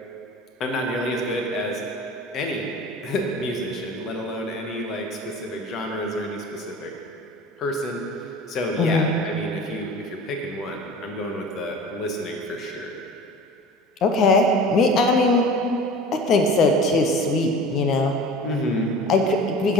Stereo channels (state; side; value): normal; both; correlation 0.39